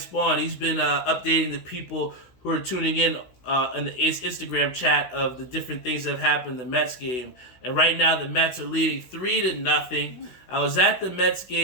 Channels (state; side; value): late; right; 16 ms